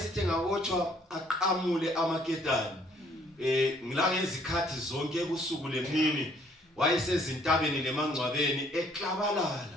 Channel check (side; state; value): both; normal; correlation 0.63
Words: ngabotshwa aqamule amaketani ngila ngezikhathi zonke kusuku lemini wayesezintabeni lemangcwabeni